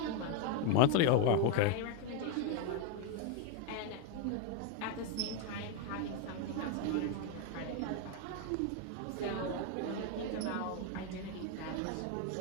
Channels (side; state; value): both; different; correlation 0.01